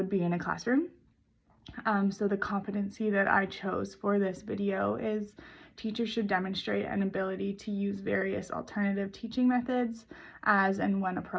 be in a classroom. So the competency that I chose for this video is teachers should demonstrate an ability to use various alternative teaching methods as and when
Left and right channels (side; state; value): both; identical; correlation 1.00